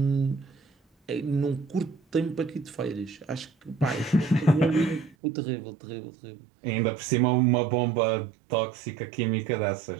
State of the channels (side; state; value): left; drops out; at 5.2 s